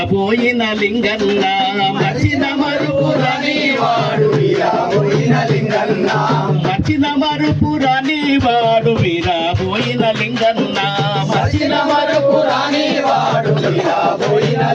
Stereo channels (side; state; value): both; identical; correlation 1.00